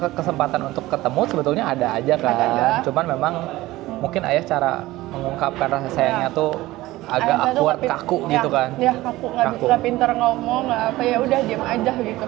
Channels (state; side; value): quieter; left; 17.8 dB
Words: untuk ketemu sebetulnya ada aja kan. Ada. Cuman memang mungkin ayah cara mengungkapkan rasa sayangnya tuh agak Ayah saya tuh awkward, nggak kaku ya, gitu kan. Ya kaku, nggak pinter ngomong, nggak apa, ya udah diam aja gitu.